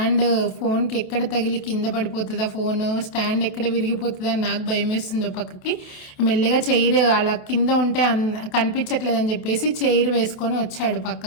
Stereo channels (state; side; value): late; right; 28 ms